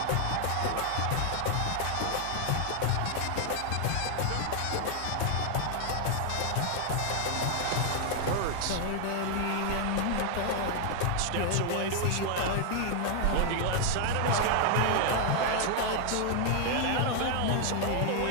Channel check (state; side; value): different; both; correlation 0.00